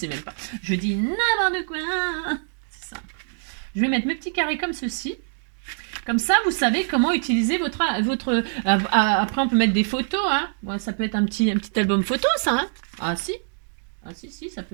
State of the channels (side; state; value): left; silent; digital silence